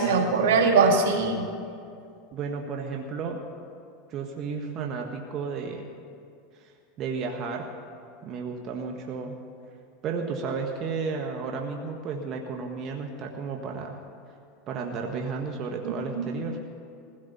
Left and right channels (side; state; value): left; quieter; 4.1 dB